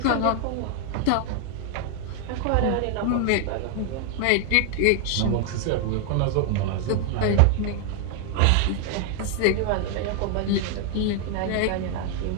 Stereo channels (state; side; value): different; both; correlation 0.00